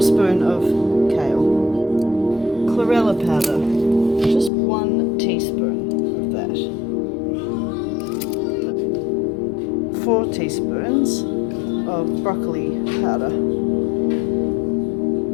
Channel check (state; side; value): drops out; right; at 4.5 s